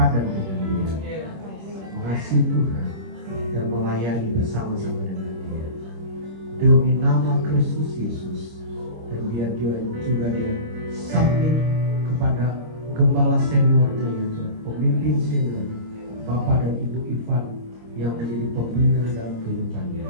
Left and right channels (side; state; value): left; late; 26 ms